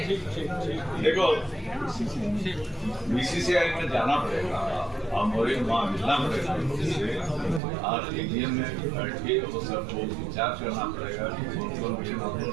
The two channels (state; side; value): drops out; left; at 7.6 s